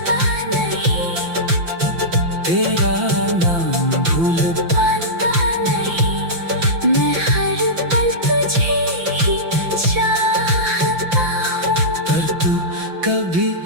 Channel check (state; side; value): late; left; 5.9 ms